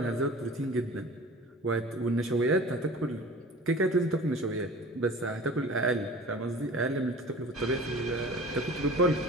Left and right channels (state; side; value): normal; both; correlation 0.41